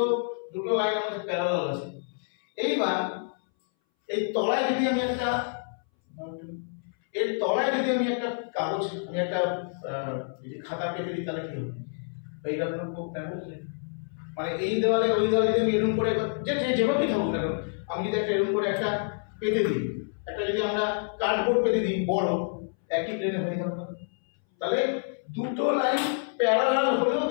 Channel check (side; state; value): right; silent; 59 dB below the other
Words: দুটো লাইন আমাদের প্যারালাল আছে, এইবার এই তলায় যদি আমি একটা কাগজ, আমি একটা খাতা পেতে দিই, তাহলে কি হবে? এইটা হলো কোপ্ল্যানার। মানে এই দেওয়ালে ওই দেওয়ালে যদি আমি এরকম করে যেভাবেই থাকুক না কেন, আমি যদি একটা এরকম করে একটা পেতে দিই, একটা যদি আমরা কার্ডবোর্ড পেতে দিই বড়, একই প্লেনে হয়ে গেল না? তাহলে দুটো লাইন প্যারালাল হলেও